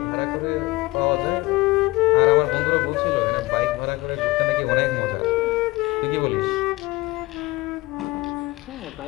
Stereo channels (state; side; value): quieter; right; 20.9 dB